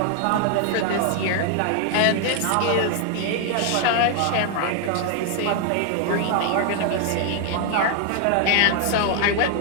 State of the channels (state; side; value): different; both; correlation 0.00